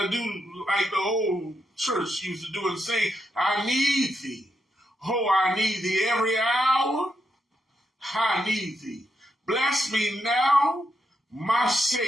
to do like the old church used to do and say, I need thee. Oh, I need thee every hour. I need thee. Bless me now, my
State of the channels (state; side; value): normal; both; correlation 0.82